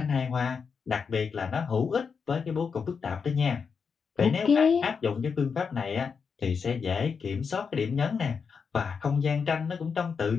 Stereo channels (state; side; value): quieter; right; 5.8 dB